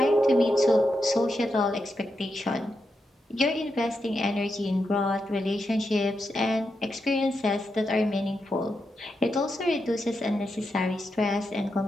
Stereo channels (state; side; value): normal; both; correlation 0.85